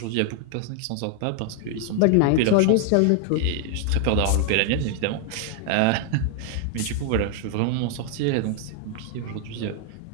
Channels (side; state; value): both; different; correlation 0.00